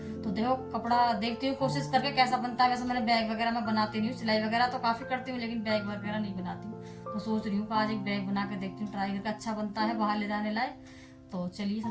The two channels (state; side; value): identical; both; correlation 1.00